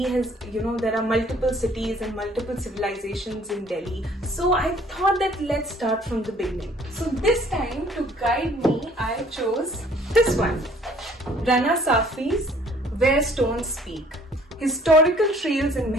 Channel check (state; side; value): normal; both; correlation 0.57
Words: has, there are multiple cities and multiple civilizations in Delhi. So I thought that let's start from the beginning. So this time to guide me, I chose this one. Rana Safi's Where Stones Speak. Historical trails in